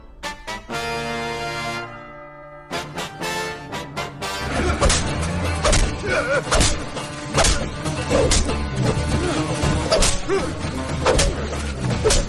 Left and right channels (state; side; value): identical; both; correlation 1.00